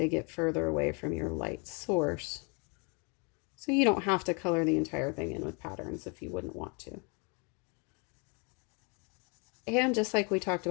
get further away from your light source. So you don't have to color the entire thing in with patterns if you wouldn't want to. And just like we talked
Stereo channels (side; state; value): right; quieter; 33.7 dB